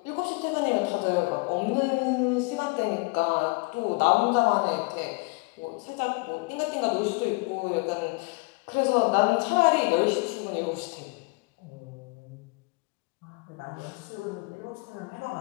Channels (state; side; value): quieter; right; 28.3 dB